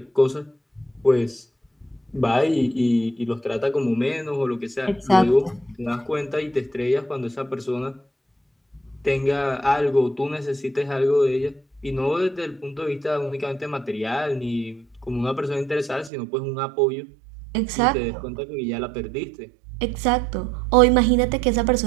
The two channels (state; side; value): drops out; left; at 16.1 s